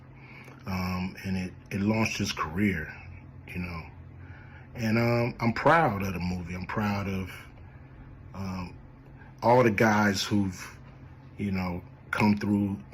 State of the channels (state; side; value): identical; both; correlation 1.00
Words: And it launched his career, And I'm proud of the movie. I'm proud of all the guys who've, come through,